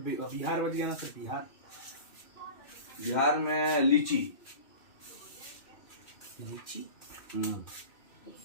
बच गया ना सर, बिहार। बिहार में लीची।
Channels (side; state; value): right; late; 2.6 ms